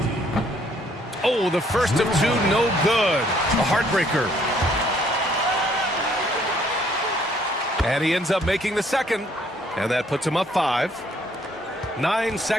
Oh, the first of 2, no good. A heartbreaker. And he ends up making the second. And that puts him up 5. 9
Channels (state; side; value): normal; both; correlation 0.64